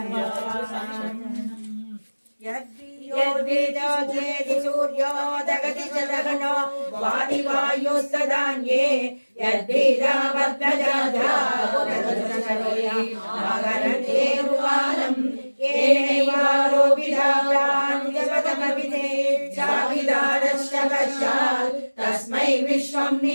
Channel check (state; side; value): inverted; both; correlation -1.00